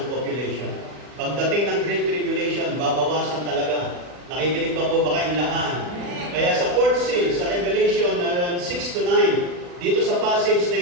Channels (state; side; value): late; left; 40 ms